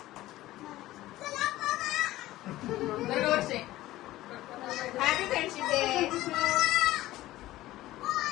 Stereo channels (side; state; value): right; quieter; 16.1 dB